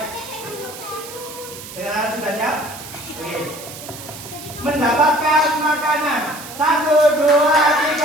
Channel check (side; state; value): right; noise; hiss, 13 dB below the sound